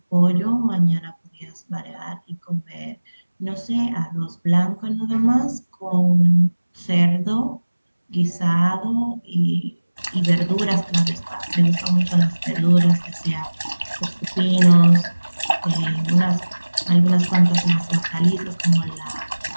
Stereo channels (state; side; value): inverted; both; correlation -1.00